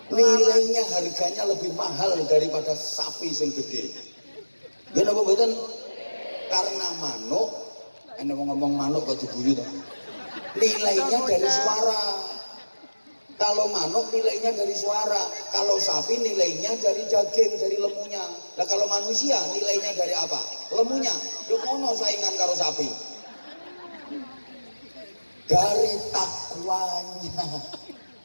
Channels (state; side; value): inverted; both; correlation -1.00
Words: nilainya harganya lebih mahal daripada sapi sing gede. Gimana apa betul? Karena manuk, anda mau ngomong manuk kok diguyu toh? Nilainya dari suara. Kalau manuk nilainya dari suara, kalau sapi nilainya dari daging, dari lemunya. Nah kalau manusia nilainya dari apa? Lemunya. Yo ono saingan karo sapi. Dari takwanya.